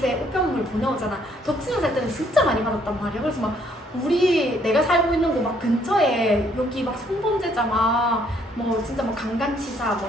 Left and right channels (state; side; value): normal; both; correlation 0.67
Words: 우편물 보내오잖아. 덕신에 살 때는 진짜 많이 받았단 말이야. 그래서 막 내가 살고 있는 곳 막 근처에 여기 막 성범죄자 뭐 진짜 뭐 강간치사,